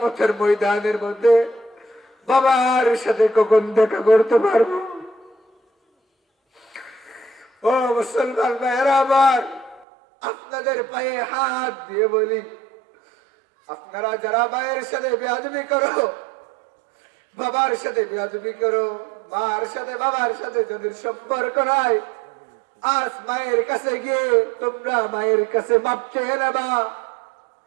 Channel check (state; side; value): drops out; left; at 9.9 s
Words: ময়দানের মধ্যে বাবার সাথে কখন দেখা করতে পারবো। ও মুসলমান ভাইয়েরা আমার, আপনাদের পায়ে হাত দিয়ে বলি, আপনারা যারা মায়ের সাথে বেয়াদবি করো, বাবার সাথে বেয়াদবি করো, মার সাথে বাবার সাথে যাদের সম্পর্ক নাই, আজ মায়ের কাছে গিয়ে তোমরা মায়ের কাছে মাপ চেয়ে নেবা।